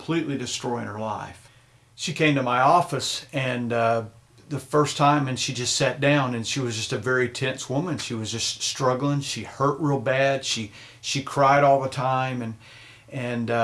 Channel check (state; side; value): identical; both; correlation 1.00